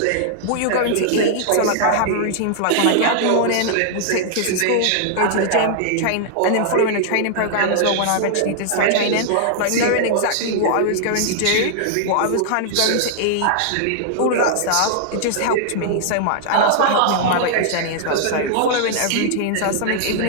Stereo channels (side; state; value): both; different; correlation -0.01